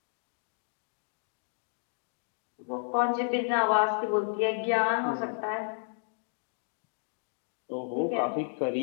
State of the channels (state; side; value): silent; right; digital silence